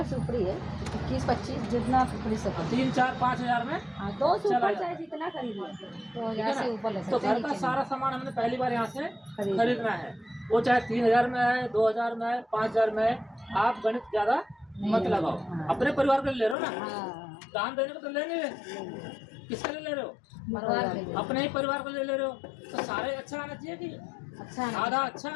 से ऊपर ही है। 21-25 जितना खरीद सको। 3, 4, 5 हजार में हाँ, 2 से चला ऊपर जाता चाहे है। जितना खरीदो। तो ठीक है हजार से ना? ऊपर ले तो सकते हैं। घर का सारा सामान हमने पहली बार यहाँ से खरीदना खरीदना है। वो चाहे 3000 में है, 2000 में है, 5000 में है। आप गणित ज्यादा मत लगाओ। अपने परिवार के लिए ले रहे हो ना। हाँ, दान देने को तो ले नहीं रहे। किसके लिए ले रहे हो? परिवार के लिए। अपने ही परिवार को ले रहे हो। तो सारे अच्छा आना चाहिए कि अच्छा आना आधा अच्छा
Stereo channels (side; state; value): right; drops out; at 16.6 s